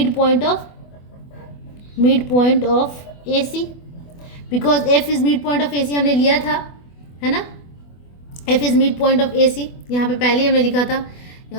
point of AC, because F is mid point of AC हमने लिया था, है ना, F is mid point of AC, यहाँ पे पहले हमने लिखा था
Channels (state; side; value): late; right; 24 ms